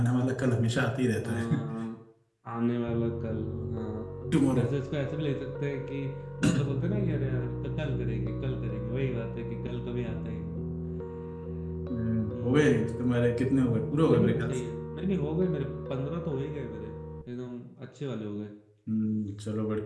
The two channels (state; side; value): identical; both; correlation 1.00